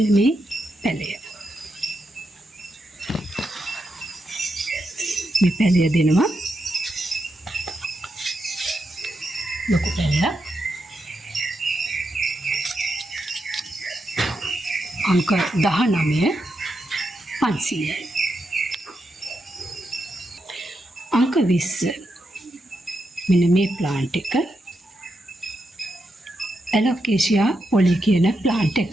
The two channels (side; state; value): both; normal; correlation 0.85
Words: මේ පැලය. මේ පැලය දෙනවා ලොකු පැලයක්. අංක 19 500යි. අංක 20 මෙන්න මේ ප්ලාන්ට් එක ඇලොකේසියා පොලි කියන ප්ලාන්ට් එක.